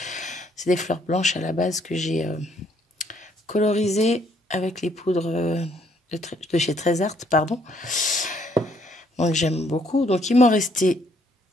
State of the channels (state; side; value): normal; both; correlation 0.67